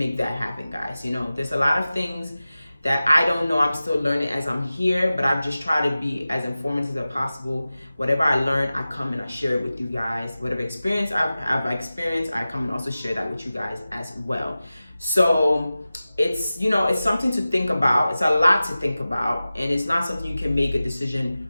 that happen, guys. You know, there's a lot of things that I don't know. I'm still learning as I'm here, but I've just tried to be as informative as possible. Whatever I learn, I come and I share it with you guys. Whatever experience I've experienced, I come and also share that with you guys as well. So it's, you know, it's something to think about. It's a lot to think about, and it's not something you can make a decision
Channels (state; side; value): inverted; both; correlation -0.96